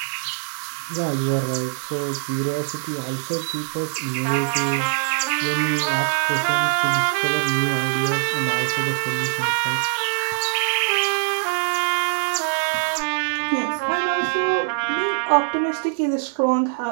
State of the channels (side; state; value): left; silent; digital silence